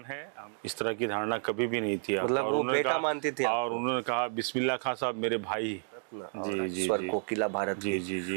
है। इस तरह की धारणा कभी भी नहीं थी आपका। मतलब और वो उन्होंने बेटा कहा, मानती थी और आपको? उन्होंने कहा बिस्मिल्लाह खां साहब मेरे भाई। और जी स्वर जी कोकिला भारत जी की। जी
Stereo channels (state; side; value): silent; left; digital silence